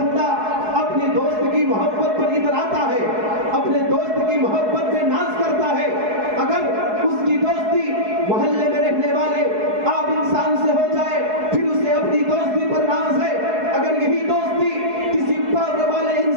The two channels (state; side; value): late; left; 4.7 ms